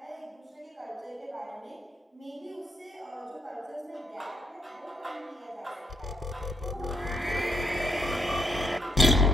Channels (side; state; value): both; normal; correlation 0.76